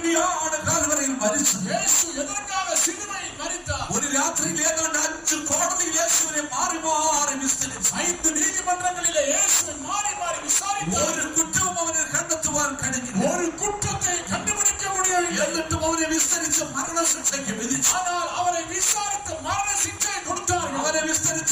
കാൽവരിയിൽ മരിച്ചത്? യേശു എதற்காக சிலுவையில் மரித்தார்? ഒരു രാത്രിയിൽ ഏതാണ്ട് 5 കോടതിയിൽ യേശുവിനെ മാറി മാറി വിസ്തരിച്ചു. 5 നീതിമன்றങ്ങളിലെ യേശുவை மாறி மாறி விசாரித்தார். ഒരു കുറ്റവും അവന് കണ്ടെത്തുവാൻ കഴിഞ്ഞില്ല. ஒரு குற்றத்தை கண்டுபிடிக்க முடியவில்லை. എന്നിട്ടും അവനെ വിസ്തരിച്ച് മരണശിക്ഷയ്ക്ക് വിധിച്ചു. ஆனால் அவரை விசாரித்து மரண சிக்ஷை கொடுத்தார்கள். അവനെ വിസ്തരിച്ച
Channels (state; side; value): identical; both; correlation 1.00